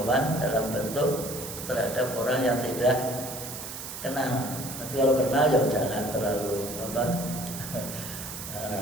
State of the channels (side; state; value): right; noise; hiss, 9 dB below the sound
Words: dalam bentuk terhadap orang yang tidak kenal. Tapi kalau kenal ya jangan terlalu